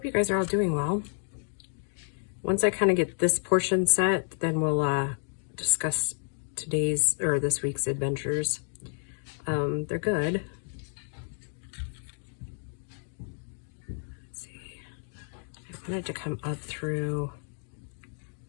you guys are all doing well. Once I kind of get this portion set, then we'll discuss today's or this week's adventures. They're good. Let's see. I wanted to come up through.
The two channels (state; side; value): silent; right; 58 dB below the other